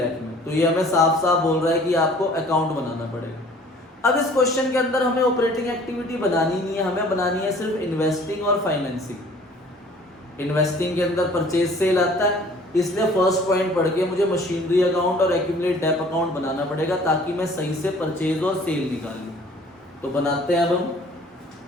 में, तो ये हमें साफ साफ बोल रहा है कि आपको अकाउंट बनाना पड़ेगा। अब इस क्वेश्चन के अंदर हमें ऑपरेटिंग एक्टिविटी बनानी नहीं है, हमें बनानी है सिर्फ इन्वेस्टिंग और फाइनेंसिंग। इन्वेस्टिंग के अंदर परचेज सेल आता है, इसलिए फर्स्ट पॉइंट पढ़ के मुझे मशीनरी अकाउंट और एक्यूमुलेट डेप अकाउंट बनाना पड़ेगा ताकि मैं सही से परचेज और सेल निकाल लूं। तो बनाते हैं अब हम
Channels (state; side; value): normal; both; correlation 0.52